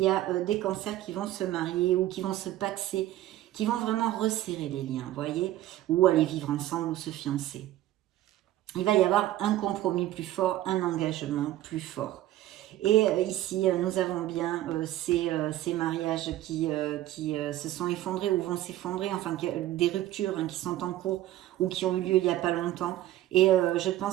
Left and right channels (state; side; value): quieter; left; 14.3 dB